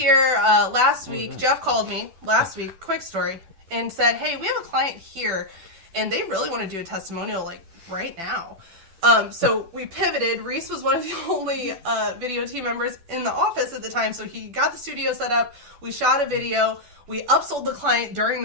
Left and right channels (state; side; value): late; left; 10 ms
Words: last week. Jeff called me last week, quick story, and said, hey, we have a client here, and they really want to do a testimonial like right now. So we pivoted. Reese was one of the only video team members in the office at the time, so he got the studio set up. We shot a video. We upsold the client during